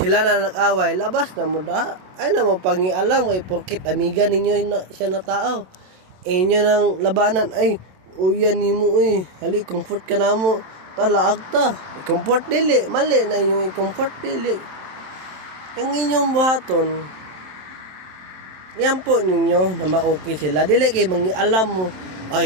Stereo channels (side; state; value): left; late; 27 ms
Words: na nag-away labas na mo da ay na mo pangialam kay porkit amiga ninyo siya na tao inyo nang labanan ay uyan nimo hali comfort ka na mo talaag ta comfort dili mali na yung comfort dili ang inyong buhaton yan po ninyo na ma-okay sila dili kay mangialam mo